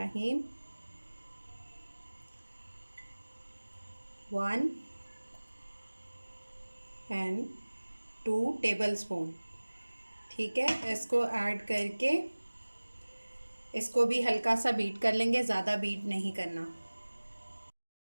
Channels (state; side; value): inverted; both; correlation -1.00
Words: 1 एंड 2 टेबलस्पून, ठीक है। इसको ऐड करके इसको भी हल्का सा बीट कर लेंगे, ज़्यादा बीट नहीं करना।